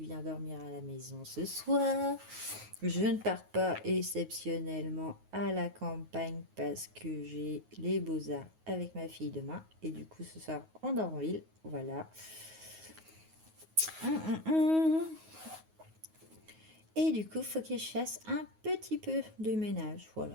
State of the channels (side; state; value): left; late; 9.4 ms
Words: dormir à la maison ce soir. Je ne pars pas exceptionnellement à la campagne parce que j'ai les beaux-arts avec ma fille demain. Et du coup, ce soir, on dort en ville. Voilà. Et du coup, il faut que je fasse un petit peu de ménage.